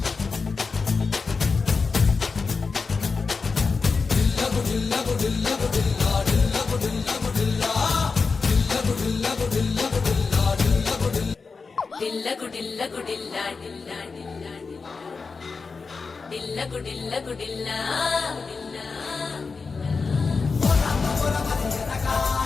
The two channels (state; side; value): quieter; right; 4.7 dB